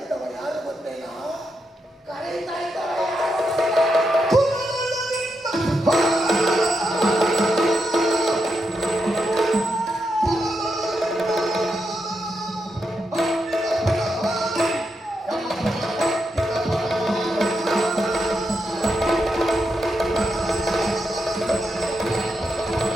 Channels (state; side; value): normal; both; correlation 0.84